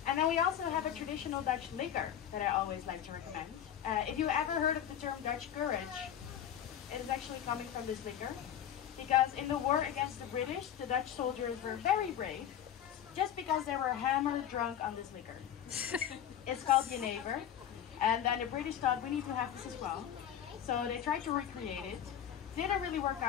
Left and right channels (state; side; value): quieter; right; 9.9 dB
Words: And then we also have a traditional Dutch liquor that I always like to recommend. If you ever heard of the term Dutch courage, it is actually coming from this liquor. Because in the war against the British, the Dutch soldiers were very brave, just because they were hammered drunk on this liquor. It's called Jenever. And then the British thought, we need to have this as well. So they tried to recreate it. Didn't really work